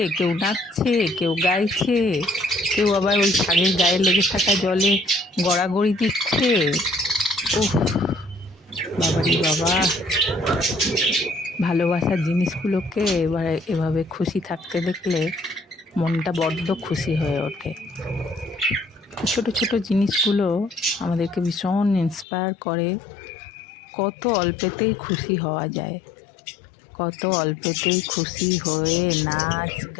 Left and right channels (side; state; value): right; drops out; at 22.2 s